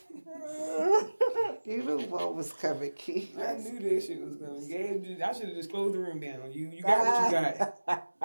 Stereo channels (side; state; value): both; inverted; correlation -1.00